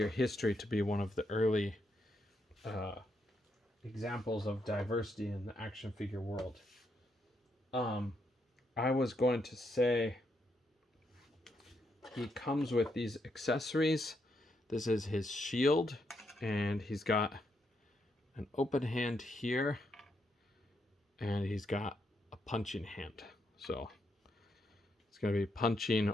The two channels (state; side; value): normal; both; correlation 0.79